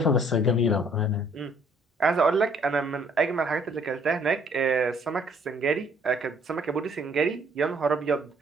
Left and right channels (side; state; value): both; normal; correlation 0.62